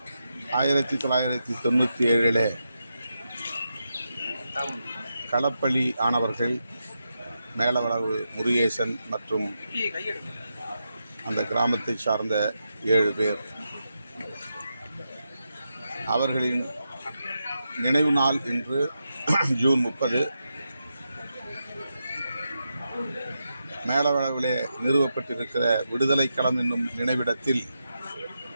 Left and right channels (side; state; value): both; inverted; correlation -0.87